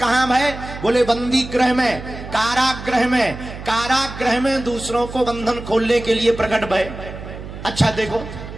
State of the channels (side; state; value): right; noise; hum, 11 dB below the sound